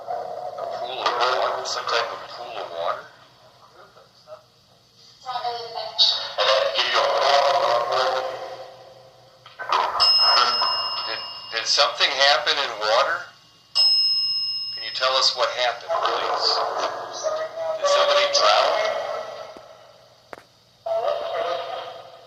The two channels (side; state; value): both; identical; correlation 1.00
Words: pool of water, some type of pool of water. Did something happen in water? Can you tell us what happened, please? Did somebody drown?